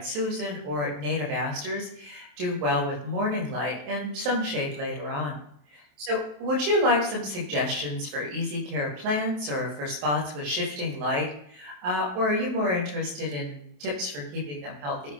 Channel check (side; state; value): left; late; 27 ms